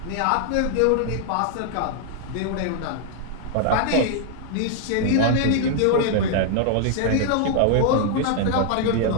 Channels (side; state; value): both; different; correlation -0.01